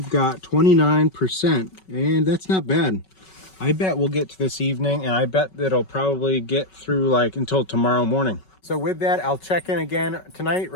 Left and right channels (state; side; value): late; right; 5.3 ms